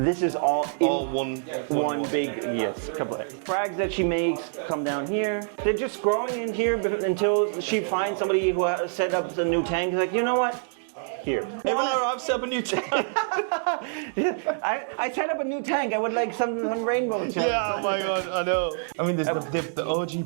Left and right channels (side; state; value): left; silent; digital silence